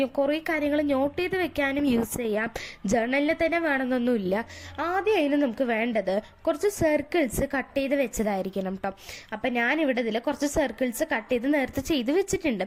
കുറേ കാര്യങ്ങൾ നോട്ട് ചെയ്ത് വെക്കാനും യൂസ് ചെയ്യാം. ജേർണലിൽ തന്നെ വേണമെന്നൊന്നുമില്ല. ആദ്യം അതിന് നമുക്ക് വേണ്ടത് കുറച്ച് സർക്കിൾസ് കട്ട് ചെയ്ത് വെച്ചതായിരിക്കണം കേട്ടോ. അപ്പം ഞാനിവിടെ ഇതിൽ കുറച്ച് സർക്കിൾസ് കട്ട് ചെയ്ത് നേരത്തെ ചെയ്ത് വെച്ചിട്ടുണ്ട്.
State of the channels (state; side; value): identical; both; correlation 1.00